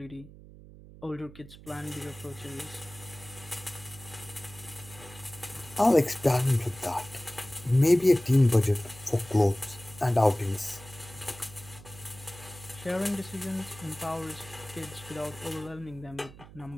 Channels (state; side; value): noise; right; hum, 19 dB below the sound